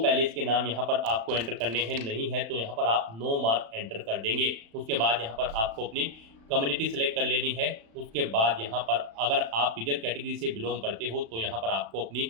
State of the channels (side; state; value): left; late; 35 ms